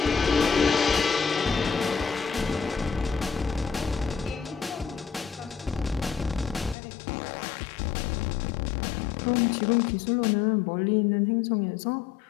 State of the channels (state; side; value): drops out; right; at 6.8 s